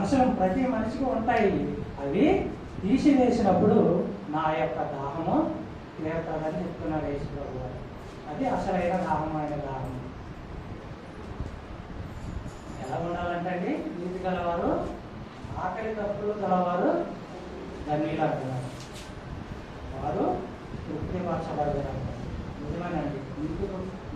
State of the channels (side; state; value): both; identical; correlation 1.00